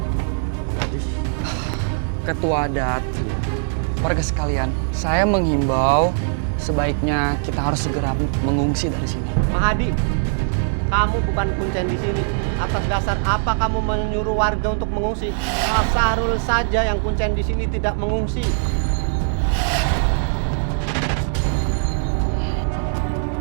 Ketua adat, warga sekalian, saya menghimbau sebaiknya kita harus segera mengungsi dari sini. Mahadi, kamu bukan kuncen di sini. Atas dasar apa kamu menyuruh warga untuk mengungsi? Pak Sahrul saja yang kuncen di sini tidak mengungsi.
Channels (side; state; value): left; silent; digital silence